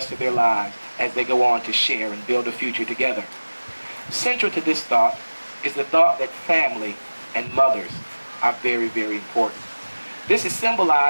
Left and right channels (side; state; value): both; inverted; correlation -1.00